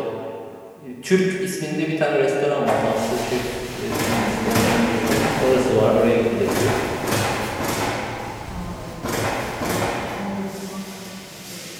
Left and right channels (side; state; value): both; identical; correlation 1.00